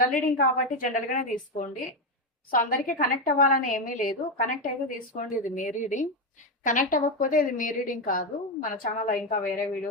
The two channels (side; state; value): both; normal; correlation 0.10